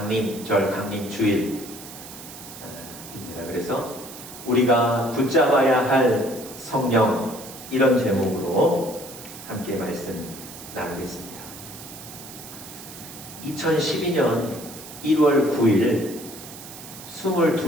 강림주일입니다. 그래서 우리가 붙잡아야 할 성령, 이런 제목으로 함께 말씀 나누겠습니다. 2012년 1월 9일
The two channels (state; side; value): noise; right; hiss, 14 dB below the sound